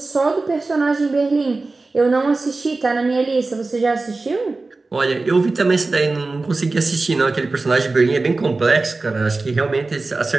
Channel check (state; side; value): quieter; left; 3.5 dB